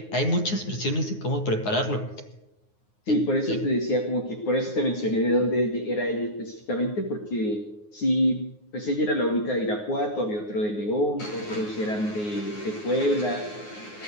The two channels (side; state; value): right; late; 9.5 ms